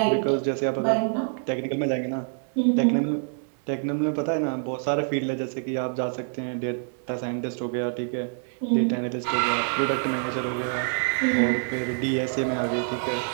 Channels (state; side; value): silent; left; 57 dB below the other